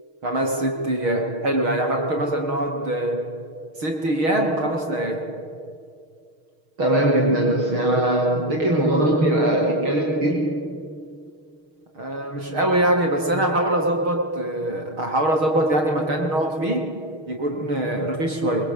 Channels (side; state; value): left; late; 6.4 ms